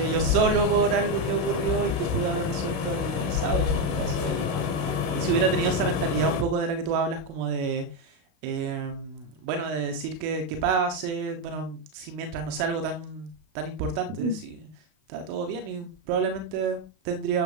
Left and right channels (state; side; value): late; left; 32 ms